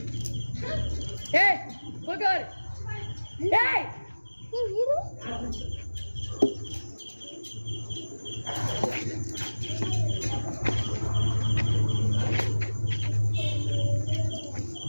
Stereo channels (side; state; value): both; inverted; correlation -1.00